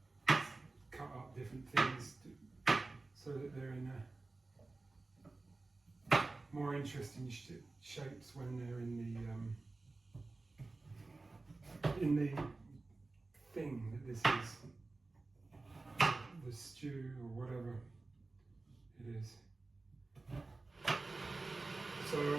cut up different things so that they're in more interesting shapes when they're in the thing that this is. The stew or whatever it is. So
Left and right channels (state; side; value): quieter; left; 3.4 dB